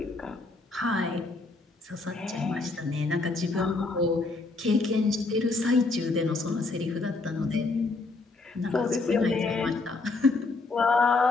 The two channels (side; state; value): right; quieter; 3.6 dB